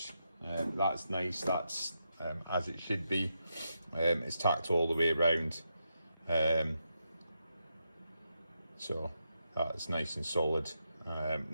That's nice, that's as it should be. It's tacked all the way around. So that's nice and solid.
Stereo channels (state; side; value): inverted; both; correlation -0.84